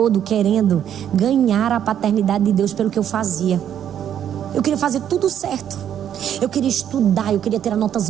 querendo ganhar a paternidade de Deus pelo que eu fazia. Eu queria fazer tudo certo. Eu queria estudar, eu queria ter notas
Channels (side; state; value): left; quieter; 9.8 dB